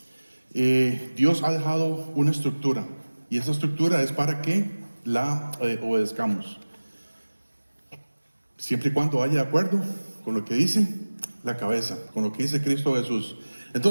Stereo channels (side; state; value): both; inverted; correlation -1.00